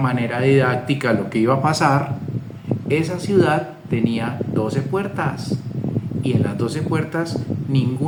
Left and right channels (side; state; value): both; identical; correlation 1.00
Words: didáctica lo que iba a pasar. Esa ciudad tenía 12 puertas, y en las 12 puertas